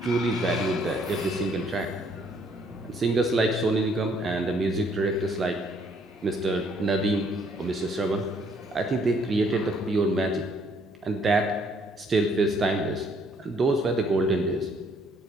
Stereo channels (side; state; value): both; normal; correlation 0.65